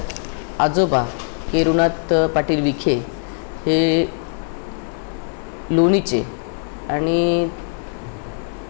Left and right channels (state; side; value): silent; right; digital silence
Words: आजोबा केरुनाथ पाटील विखे हे लोणीचे, आणि